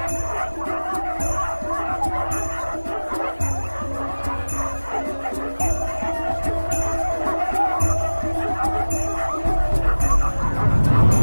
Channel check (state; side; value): inverted; both; correlation -1.00